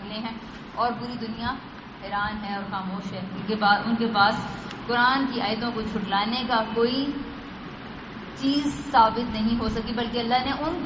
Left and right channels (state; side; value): identical; both; correlation 1.00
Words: ہیں اور پوری دنیا حیران ہے اور خاموش ہے. ان کے پاس قرآن کی آیتوں کو جھٹلانے کا کوئی چیز ثابت نہیں ہو سکی، بلکہ اللہ نے ان